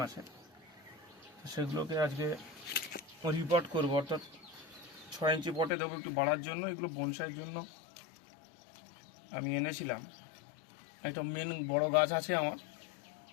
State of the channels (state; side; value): drops out; right; at 5.7 s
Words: মাসে, সেগুলোকে আজকে রিপোর্ট করব, অর্থাৎ 6 ইঞ্চি পটে দেবো একটু বাড়ার জন্য। এগুলো বনসাইয়ের জন্য আমি এনেছিলাম। একটা মেন বড় গাছ আছে আমার,